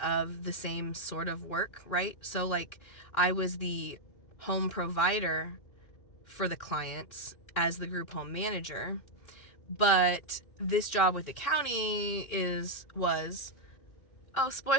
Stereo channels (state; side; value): late; right; 2.4 ms